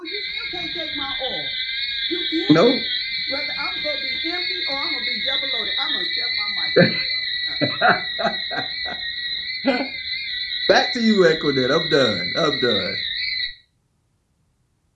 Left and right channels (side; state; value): both; identical; correlation 1.00